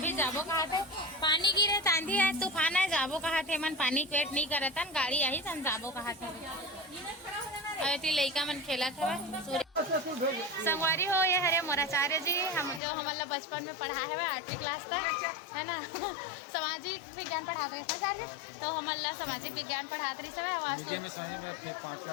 जाबो कहा थे पानी गिरे आंधी है तूफान है जाबो कहा थे मन पानी वेट नहीं करत हन गाड़ी आई सन जाबो कहा थे अरे लइका मन खेलत हवे संगवारी हो ये हरे मोराचार्य जी हम जो हमला बचपन में पढ़ा है 8वीं क्लास तक है ना सामाजिक विज्ञान पढ़ाते रहे सर जी तो हमला सामाजिक विज्ञान पढ़ाते रही समय वास्तु में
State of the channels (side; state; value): right; drops out; at 12.8 s